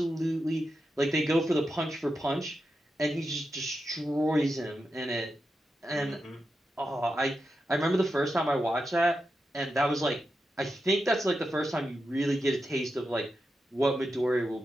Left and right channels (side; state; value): both; normal; correlation 0.88